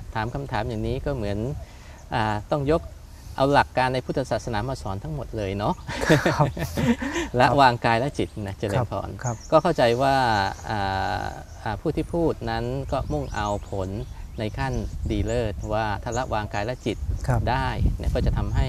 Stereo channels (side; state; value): both; identical; correlation 1.00